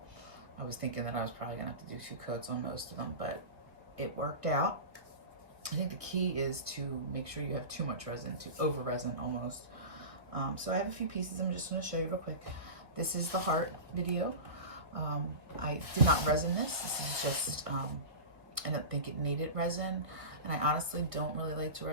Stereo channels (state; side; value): late; left; 1.8 ms